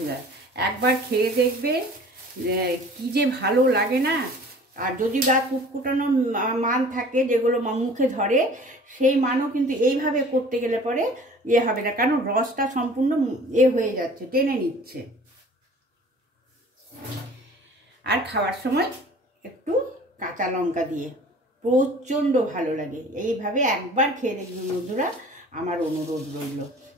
একবার খেয়ে দেখবে কি যে ভালো লাগে না। আর যদি গা কুটকুটানো মান থাকে, যেগুলো মুখে ধরে, সেই মানও কিন্তু এইভাবে করতে গেলে পরে হবে না, কারণ রসটা সম্পূর্ণ হয়ে যাচ্ছে, টেনে নিচ্ছে। আর খাওয়ার সময় একটু কাঁচা লঙ্কা দিয়ে প্রচণ্ড ভালো লাগে। এইভাবে একবার খেয়ে দেখবেন বন্ধুরা, আমার অনুরোধ রইল।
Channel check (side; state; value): both; normal; correlation 0.46